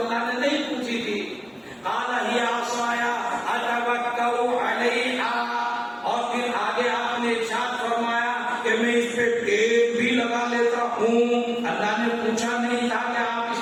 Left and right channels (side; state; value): both; identical; correlation 1.00